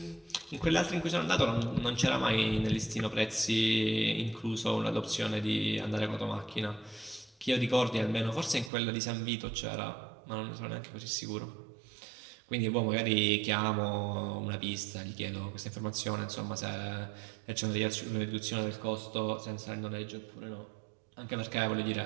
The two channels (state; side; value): drops out; left; at 8.7 s